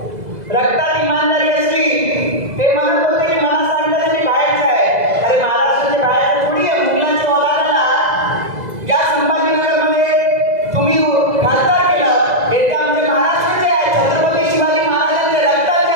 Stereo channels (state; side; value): late; left; 2.0 ms